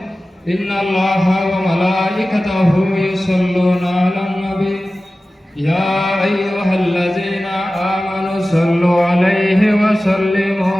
إن الله وملائكته يصلون على النبي يا أيها الذين آمنوا صلوا عليه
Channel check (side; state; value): both; normal; correlation 0.96